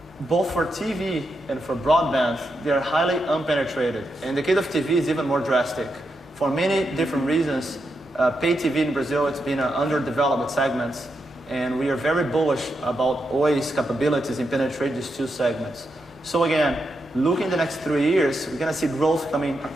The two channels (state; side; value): normal; both; correlation 0.84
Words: both for TV and for broadband, they are highly unpenetrated. And the case of TV is even more drastic. For many different reasons, pay TV in Brazil, it's been an underdeveloped segment. And we are very bullish about Oi's capabilities in penetrating these 2 segments. So again, looking the next 3 years, we're going to see growth coming